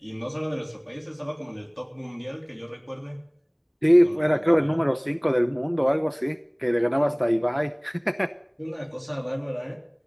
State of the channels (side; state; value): both; identical; correlation 1.00